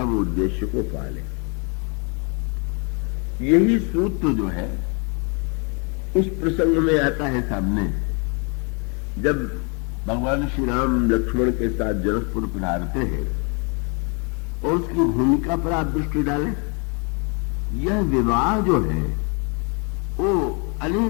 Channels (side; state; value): right; quieter; 34.6 dB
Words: उद्देश्य को पा लें। यही सूत्र जो है उस प्रसंग में आता है सामने, जब भगवान श्री राम लक्ष्मण के साथ जनकपुर पधारते हैं और उसकी भूमिका पर आप दृष्टि डालें। यह विवाह जो है वो